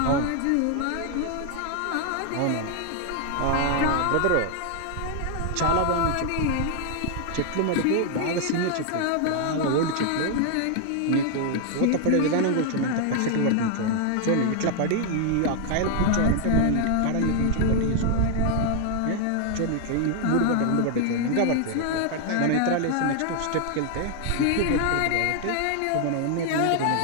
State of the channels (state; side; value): different; both; correlation 0.00